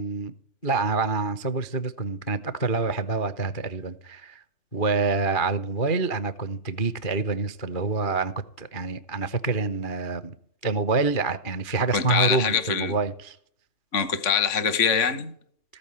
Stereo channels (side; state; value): right; late; 3.5 ms